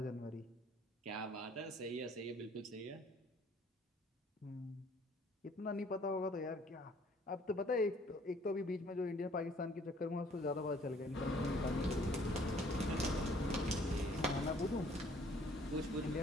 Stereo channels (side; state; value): both; normal; correlation 0.58